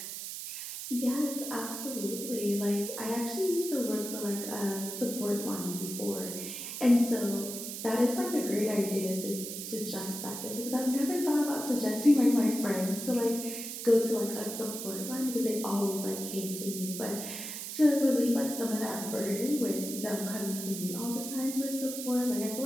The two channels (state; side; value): noise; right; hiss, 7 dB below the sound